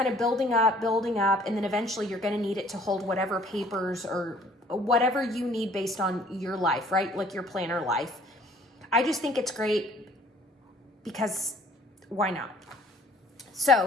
of building up, and then eventually you're going to need it to hold whatever papers or whatever you need based on your life, right? Like your planner life. I just think it's great because why not?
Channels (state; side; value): normal; both; correlation 0.56